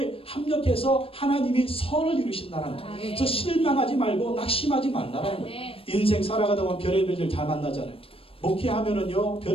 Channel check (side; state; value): right; late; 0.27 ms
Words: 합력해서 하나님이 선을 이루신다는 거예요. 그래서 실망하지 말고 낙심하지 말라는 거예요. 인생 살아가다 보면 별의별 일 다 만나잖아요. 목회하면은요